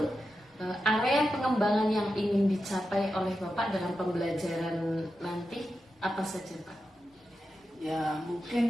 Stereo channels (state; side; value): normal; both; correlation 0.89